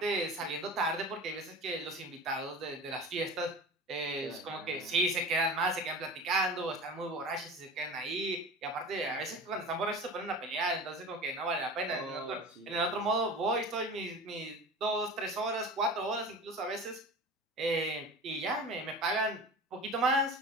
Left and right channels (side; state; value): both; normal; correlation 0.35